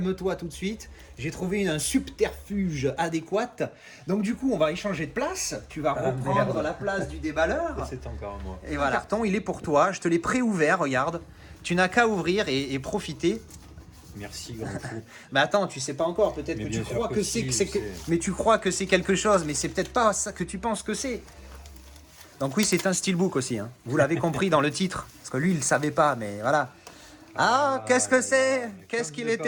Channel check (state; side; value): identical; both; correlation 1.00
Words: tout de suite. J'ai trouvé un subterfuge adéquat. Donc du coup, on va échanger de place. Tu vas reprendre la place du déballeur. C'est encore moi. Et voilà, le carton, il est pour toi. Je te l'ai pré-ouvert, regarde. Tu n'as qu'à ouvrir et profiter. Merci, grand fou. Mais attends, tu sais pas encore. Peut-être Mais que bien tu sûr crois que que si, c'est... je sais. Mais tu crois que c'est quelque chose, mais c'est peut-être pas ça que tu penses que c'est. Donc oui, c'est un steelbook aussi. Hein. Vous l'avez compris dans le titre. Parce que lui, il ne savait pas, mais voilà. Ah, qu'est-ce que c'est? Qu'est-ce qu'il est